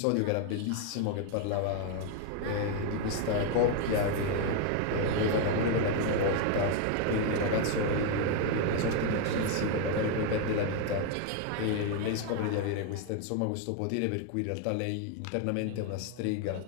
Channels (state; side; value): different; both; correlation 0.01